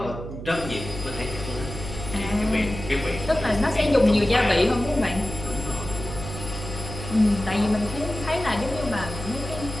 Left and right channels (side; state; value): right; noise; hum, 9 dB below the sound